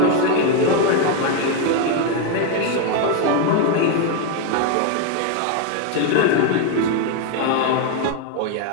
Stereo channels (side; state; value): both; different; correlation 0.01